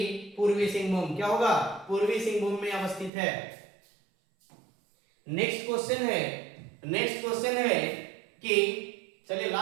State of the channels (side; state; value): left; drops out; at 3.1 s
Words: पूर्वी सिंहभूम। क्या होगा? पूर्वी सिंहभूम में अवस्थित है। नेक्स्ट क्वेश्चन है कि चलिए